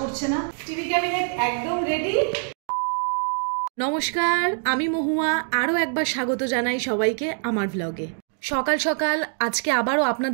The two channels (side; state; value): left; silent; 60 dB below the other